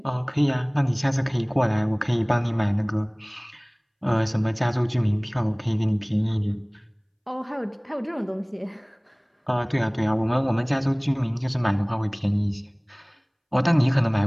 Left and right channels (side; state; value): both; identical; correlation 1.00